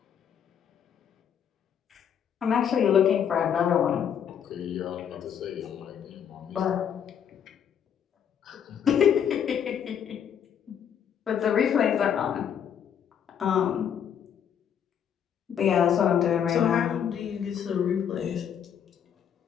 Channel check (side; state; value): right; quieter; 8.5 dB